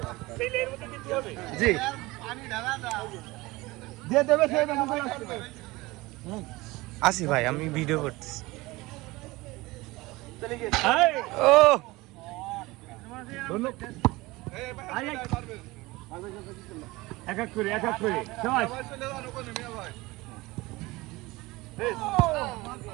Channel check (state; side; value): quieter; left; 21.2 dB